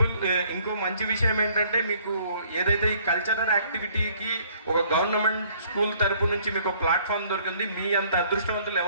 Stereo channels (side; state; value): both; inverted; correlation -0.60